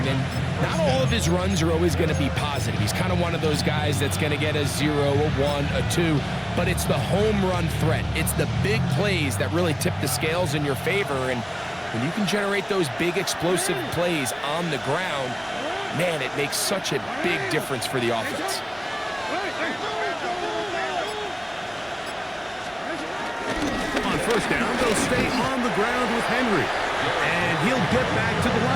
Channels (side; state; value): both; identical; correlation 1.00